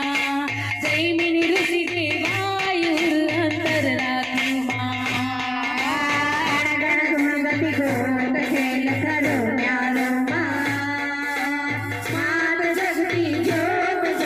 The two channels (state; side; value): noise; left; hum, 29 dB below the sound